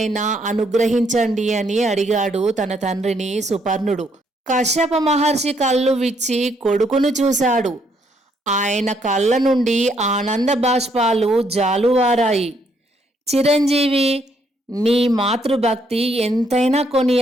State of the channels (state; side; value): normal; both; correlation 0.71